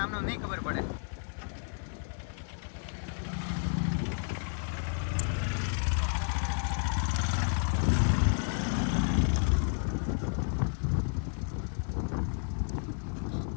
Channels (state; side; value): silent; right; 57 dB below the other